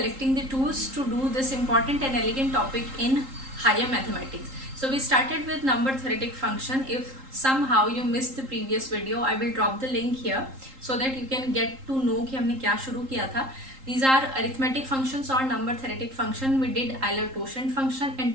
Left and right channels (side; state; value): left; late; 3.8 ms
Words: the tools to do this important and elegant topic in higher mathematics. So we started with number theoretic function. If somehow you missed the previous video, I will drop the link here so that you can get to know कि हमने क्या शुरू किया था. These are arithmetic functions or number theoretic function. We did Euler-Quotient function and